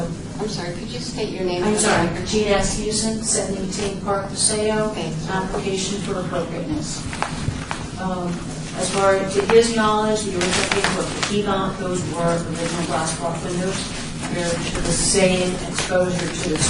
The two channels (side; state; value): both; identical; correlation 1.00